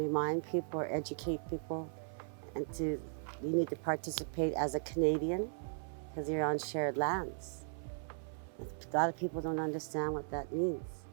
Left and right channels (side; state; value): left; silent; 53 dB below the other